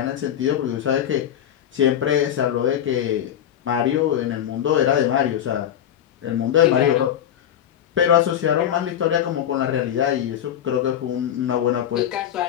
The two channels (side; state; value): right; quieter; 10.2 dB